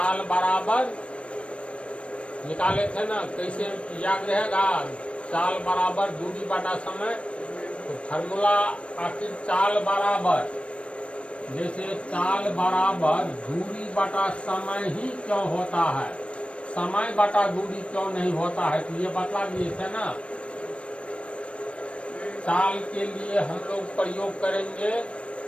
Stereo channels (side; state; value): right; late; 0.061 ms